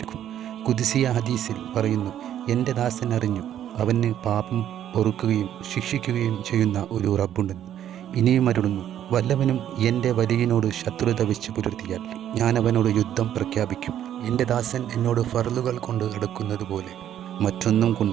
ഖുദ്സിയ ഹദീസിൽ പറയുന്നു, എൻ്റെ ദാസൻ അറിഞ്ഞു അവന് പാപം പൊറുക്കുകയും ശിക്ഷിക്കുകയും ചെയ്യുന്ന ഒരു റബ്ബുണ്ടെന്ന്. ഇനിയും അരുളുന്നു, വല്ലവനും എൻ്റെ വലിയനോട് ശത്രുത വെച്ച് പുലർത്തിയാൽ ഞാൻ അവനോട് യുദ്ധം പ്രഖ്യാപിക്കും. എൻ്റെ ദാസൻ എന്നോട് ഫർളുകൾ കൊണ്ട് അടുക്കുന്നത് പോലെ മറ്റൊന്നും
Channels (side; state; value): left; quieter; 10.7 dB